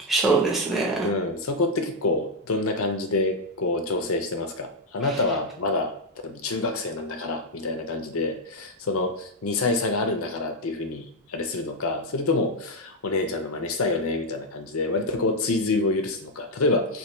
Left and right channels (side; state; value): both; normal; correlation 0.01